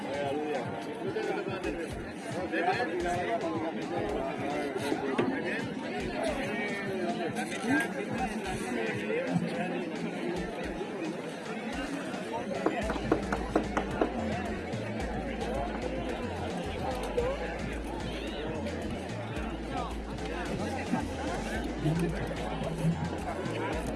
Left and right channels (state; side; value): identical; both; correlation 1.00